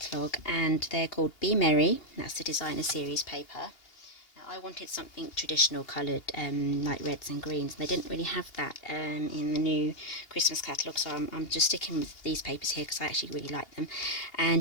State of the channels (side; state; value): right; late; 2.8 ms